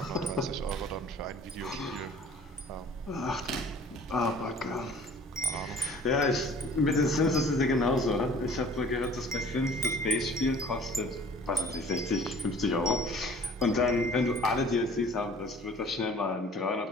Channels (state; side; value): normal; both; correlation 0.49